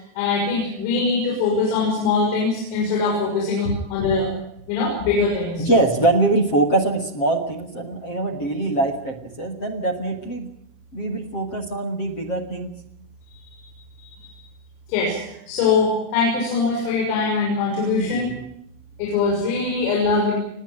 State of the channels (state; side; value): late; right; 7.5 ms